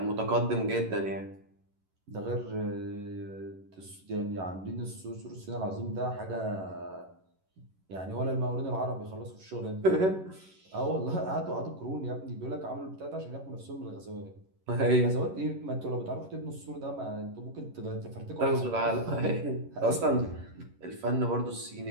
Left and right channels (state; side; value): late; left; 11 ms